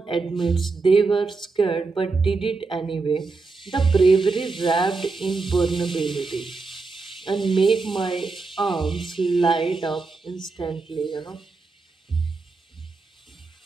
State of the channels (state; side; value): quieter; left; 4.0 dB